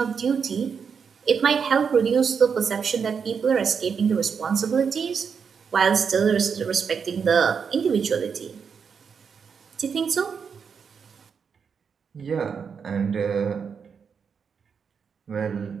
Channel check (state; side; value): quieter; left; 6.4 dB